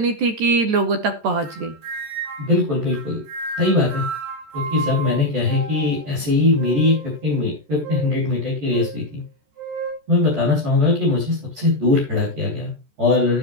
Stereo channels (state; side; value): late; left; 14 ms